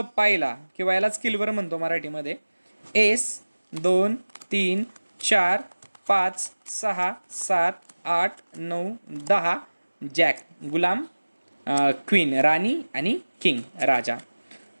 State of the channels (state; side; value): inverted; both; correlation -1.00